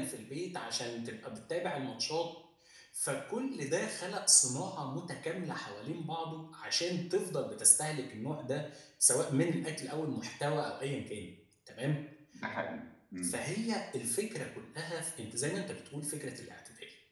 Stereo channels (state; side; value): identical; both; correlation 1.00